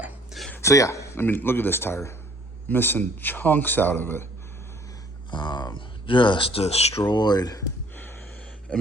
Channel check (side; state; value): both; normal; correlation 0.57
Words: So yeah, look at this tire. Missing chunks out of it. Just destroyed.